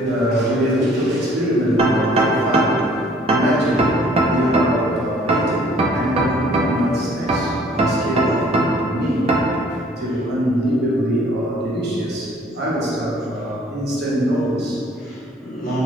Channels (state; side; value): normal; both; correlation 0.57